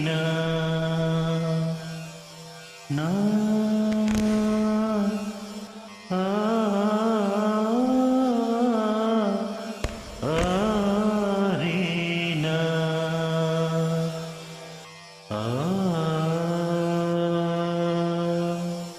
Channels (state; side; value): identical; both; correlation 1.00